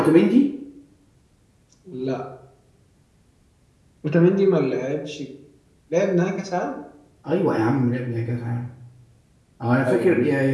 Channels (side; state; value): both; identical; correlation 1.00